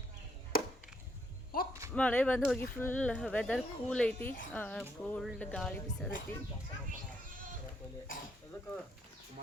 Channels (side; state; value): both; normal; correlation 0.74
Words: ಮಳೆ ಬಂದು ಹೋಗಿ ಫುಲ್ ವೆದರ್ ಕೂಲ್ ಐತಿ. ಕೋಲ್ಡ್ ಗಾಳಿ ಬಿಸದೈತಿ.